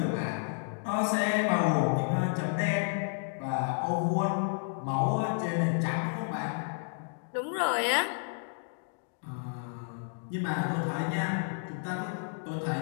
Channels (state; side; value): silent; right; digital silence